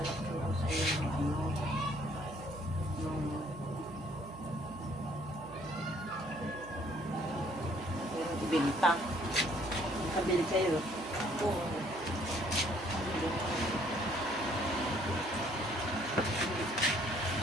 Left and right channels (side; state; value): right; noise; hum, 16 dB below the sound